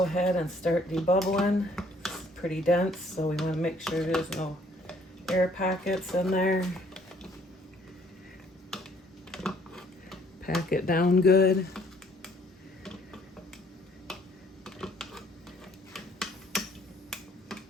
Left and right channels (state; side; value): normal; both; correlation 0.62